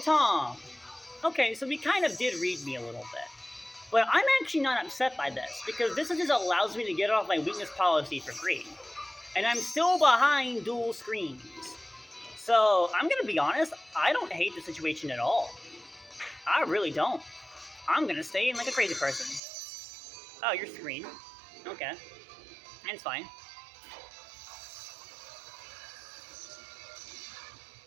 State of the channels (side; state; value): left; drops out; at 19.4 s